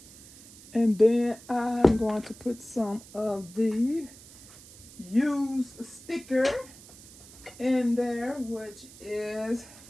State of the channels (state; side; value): noise; right; hiss, 20 dB below the sound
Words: And then I'm going to put some of the used sticker in there, which is